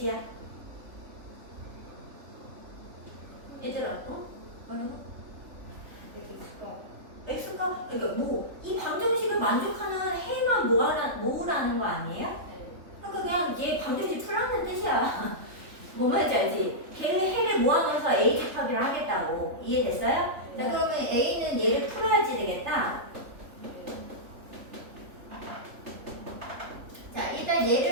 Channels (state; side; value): late; left; 3.5 ms